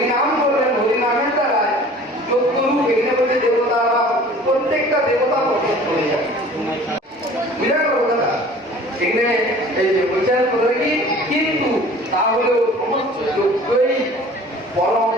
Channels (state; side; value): normal; both; correlation 0.47